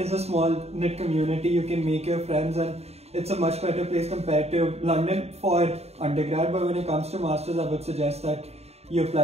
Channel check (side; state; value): left; late; 0.30 ms